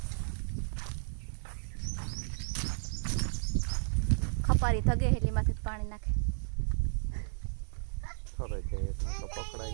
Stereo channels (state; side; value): silent; left; digital silence